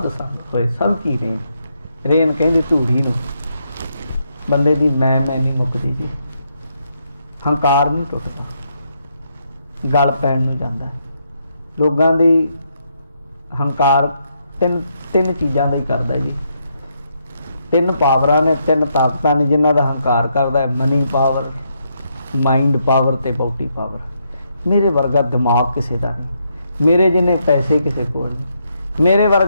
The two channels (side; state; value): both; inverted; correlation -0.78